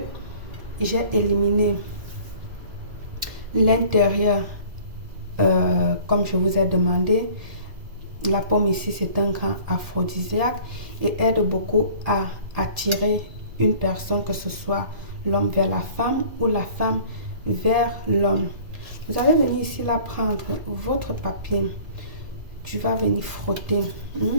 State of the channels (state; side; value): late; left; 1.8 ms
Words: J'ai éliminé l'intérieur comme je vous ai demandé. La pomme ici, c'est un grand aphrodisiaque et aide beaucoup à attirer une personne, que ce soit l'homme vers la femme ou la femme vers l'homme. Vous allez venir ici là prendre votre papier. Tu vas venir frotter